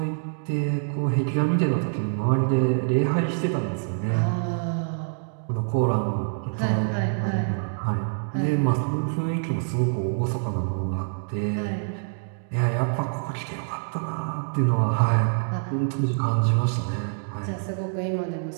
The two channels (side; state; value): left; silent; digital silence